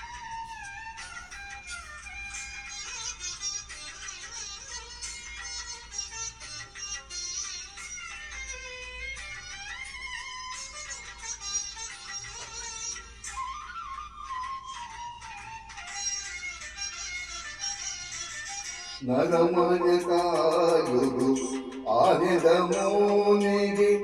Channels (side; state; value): both; identical; correlation 1.00